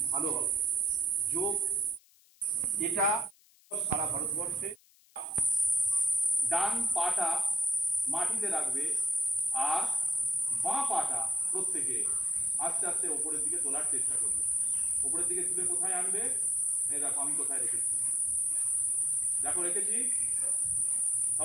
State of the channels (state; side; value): noise; left; hiss, 30 dB below the sound